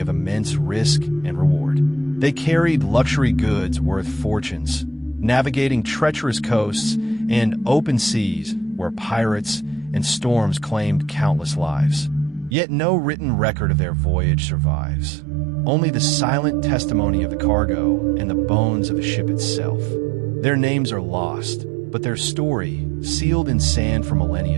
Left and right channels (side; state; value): left; drops out; at 12.6 s